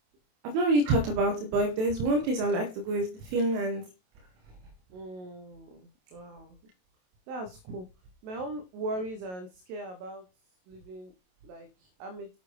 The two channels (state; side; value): late; left; 27 ms